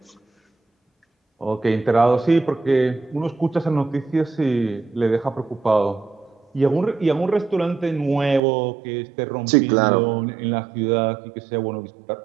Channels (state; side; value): drops out; left; at 8.4 s